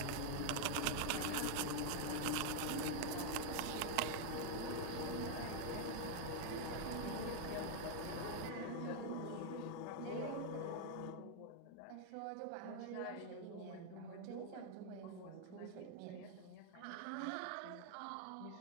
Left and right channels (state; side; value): different; both; correlation 0.00